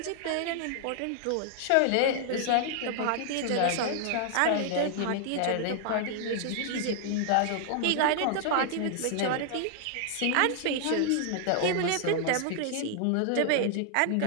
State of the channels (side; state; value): both; different; correlation -0.01